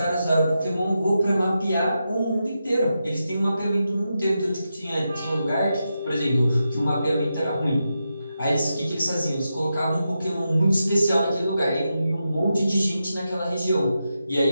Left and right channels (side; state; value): both; inverted; correlation -0.88